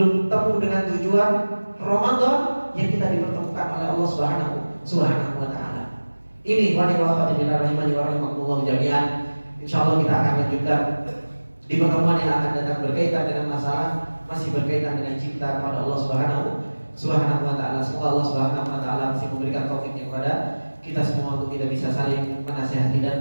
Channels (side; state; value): both; inverted; correlation -1.00